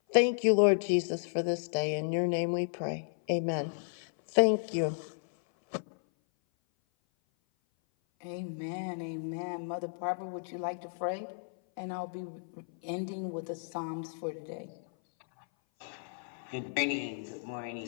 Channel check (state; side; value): silent; right; 56 dB below the other